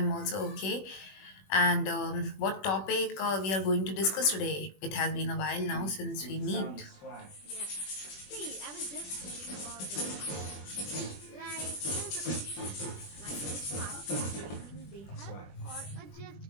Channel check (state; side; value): late; right; 21 ms